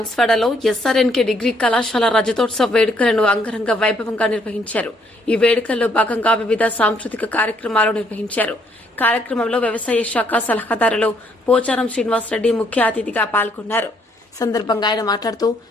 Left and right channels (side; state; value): both; normal; correlation 0.69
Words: ఎస్ఆర్ఎన్కే డిగ్రీ కళాశాల రజతోత్సవ వేడుకలను అంగరంగ వైభవంగా నిర్వహించారు. ఈ వేడుకల్లో భాగంగా వివిధ సాంస్కృతిక కార్యక్రమాలు నిర్వహించారు. కార్యక్రమంలో వ్యవసాయ శాఖ సలహాదారులు పోచారం శ్రీనివాసరెడ్డి ముఖ్య అతిథిగా పాల్గొన్నారు. సందర్భంగా ఆయన మాట్లాడుతూ